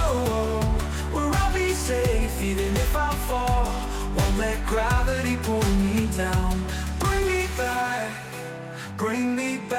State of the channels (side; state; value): both; identical; correlation 1.00